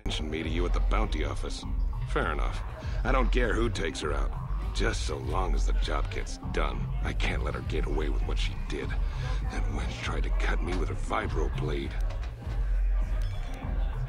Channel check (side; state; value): both; identical; correlation 1.00